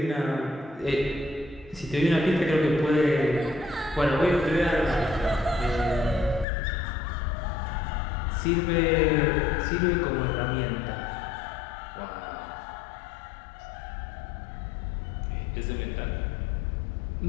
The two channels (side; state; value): right; drops out; at 6.5 s